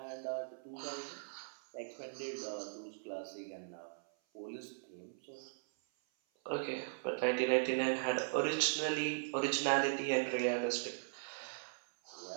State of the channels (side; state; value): left; silent; 52 dB below the other